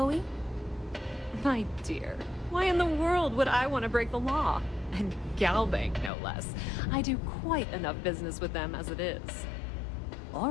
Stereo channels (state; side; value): drops out; right; at 6.1 s